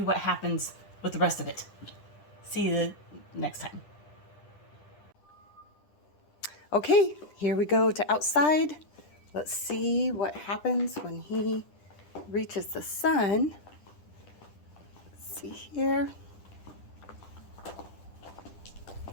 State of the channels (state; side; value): late; right; 10 ms